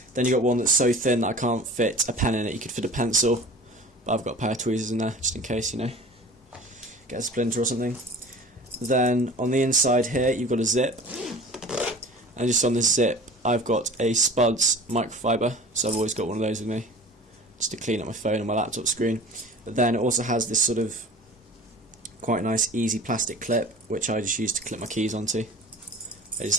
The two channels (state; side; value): normal; both; correlation 0.41